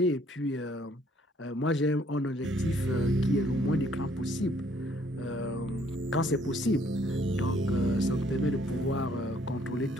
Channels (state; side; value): normal; both; correlation 0.64